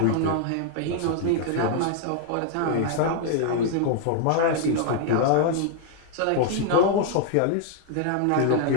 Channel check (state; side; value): different; both; correlation 0.00